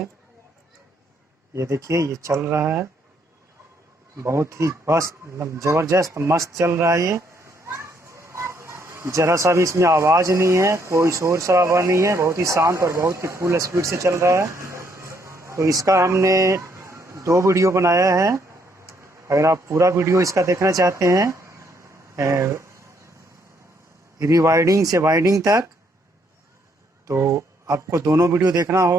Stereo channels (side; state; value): both; normal; correlation 0.71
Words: ये देखिए ये चल रहा है, बहुत ही बस ज़बरदस्त मस्त चल रहा है। ये ज़रा सा भी इसमें आवाज़ नहीं है, कोई शोर शराबा नहीं है, बहुत ही शांत और बहुत ही फुल स्पीड से चल रहा है। तो इसका हमने 2 वीडियो बनाया है। अगर आप पूरा वीडियो इसका देखना चाहते हैं रिवाइंडिंग से वाइंडिंग तक, तो आपको दोनों वीडियो देखना